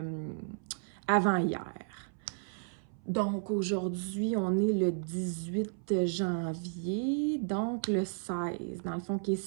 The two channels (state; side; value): silent; left; 56 dB below the other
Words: avant-hier. Donc, aujourd'hui, on est le 18 janvier, donc le 16, dans le fond, qui est